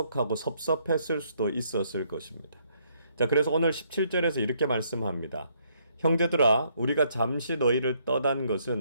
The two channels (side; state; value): both; inverted; correlation -0.70